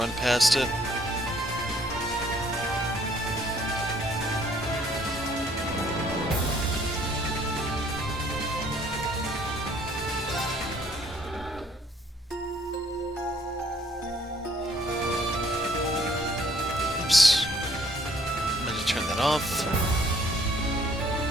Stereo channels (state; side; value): normal; both; correlation 0.62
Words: past it. Oops. I'm gonna turn that off.